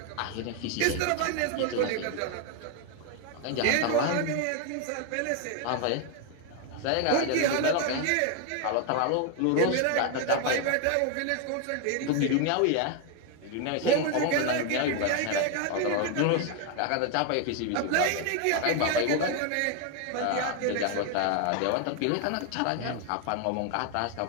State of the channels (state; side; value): different; both; correlation 0.01